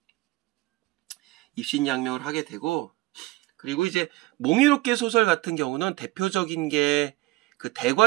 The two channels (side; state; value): left; quieter; 19.9 dB